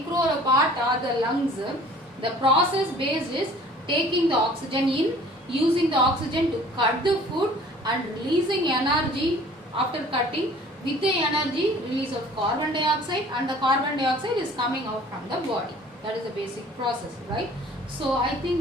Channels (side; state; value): both; normal; correlation 0.50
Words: or a part or the lungs, the process base is taking the oxygen in, using the oxygen to cut the food and releasing energy after cutting. With the energy, release of carbon dioxide, and the carbon dioxide is coming out from the body. That is the basic process, right? So I